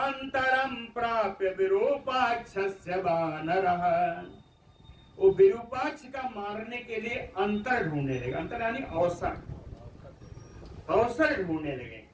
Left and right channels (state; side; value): identical; both; correlation 1.00